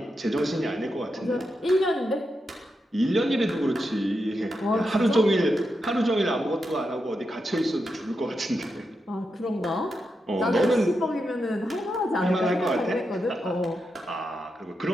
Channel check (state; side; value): normal; both; correlation 0.86